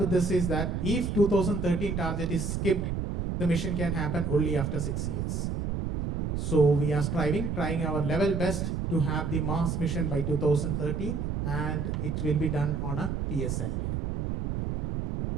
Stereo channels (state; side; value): noise; right; rumble, 2 dB below the sound